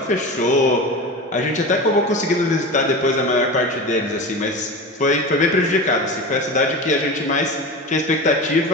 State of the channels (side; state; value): both; normal; correlation 0.28